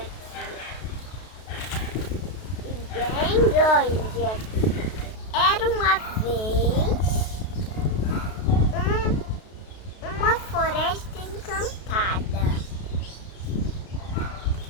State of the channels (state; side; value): late; right; 32 ms